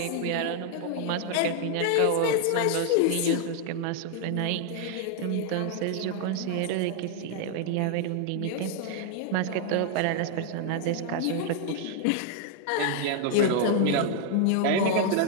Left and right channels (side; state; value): both; different; correlation 0.00